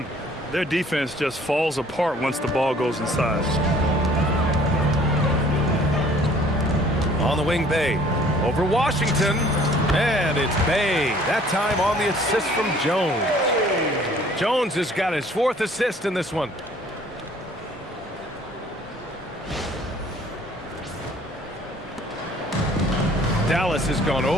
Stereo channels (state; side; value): normal; both; correlation 0.55